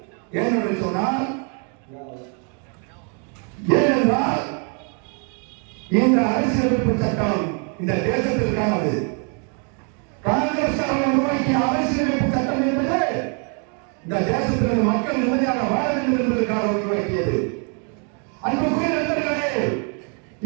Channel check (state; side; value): quieter; left; 39.3 dB